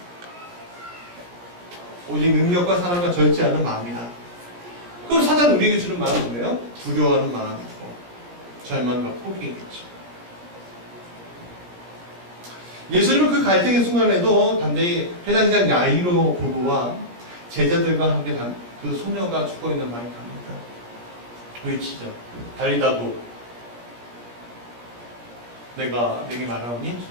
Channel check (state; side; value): late; left; 17 ms